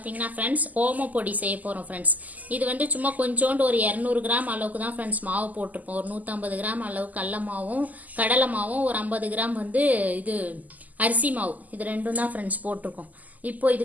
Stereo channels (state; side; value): late; left; 0.079 ms